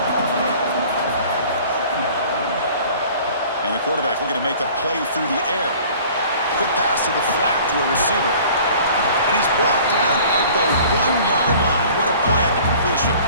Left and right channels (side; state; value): both; inverted; correlation -0.49